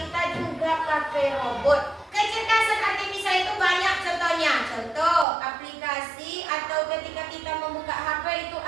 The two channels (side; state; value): left; drops out; at 5.2 s